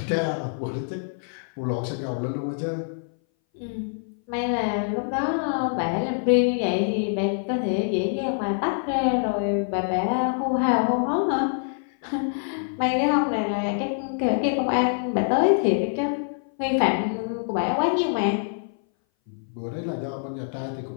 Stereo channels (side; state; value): right; silent; 59 dB below the other